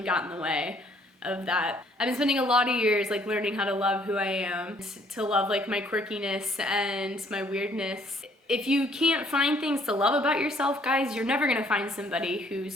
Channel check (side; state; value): both; normal; correlation 0.63